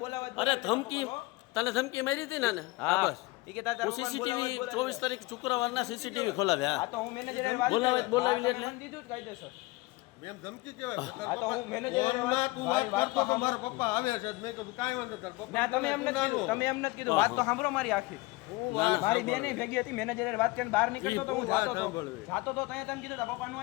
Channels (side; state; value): right; quieter; 22.0 dB